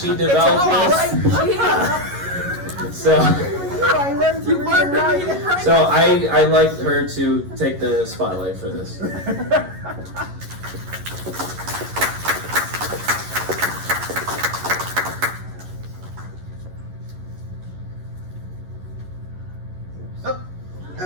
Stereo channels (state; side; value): late; left; 11 ms